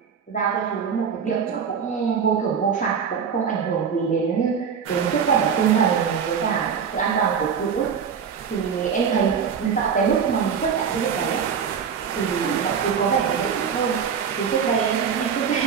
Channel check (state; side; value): quieter; left; 6.9 dB